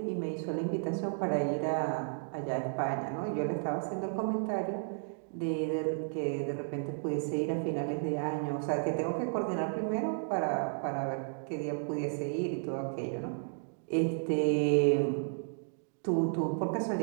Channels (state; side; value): silent; left; digital silence